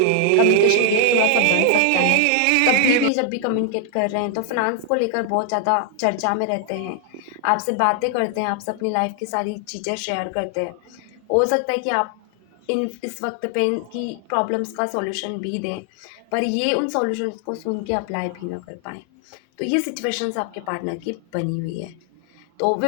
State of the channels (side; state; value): both; different; correlation 0.00